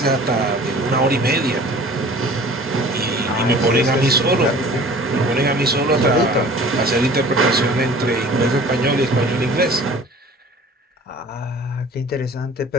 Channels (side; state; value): both; normal; correlation 0.46